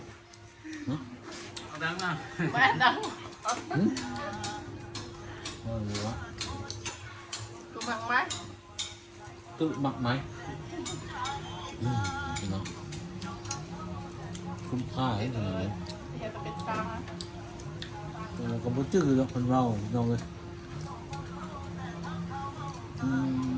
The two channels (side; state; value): both; identical; correlation 1.00